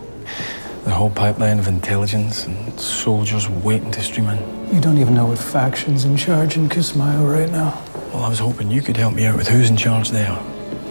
The whole pipeline of intelligence and soldiers waiting to stream in. You don't even know what faction's in charge in Kismayo right now. Well, I was hoping you could help me out with who's in charge there.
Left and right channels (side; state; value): both; inverted; correlation -1.00